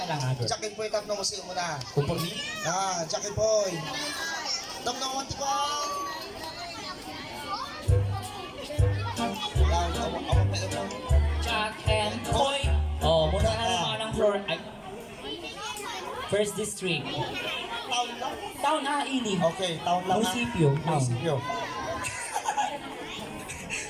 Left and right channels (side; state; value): both; identical; correlation 1.00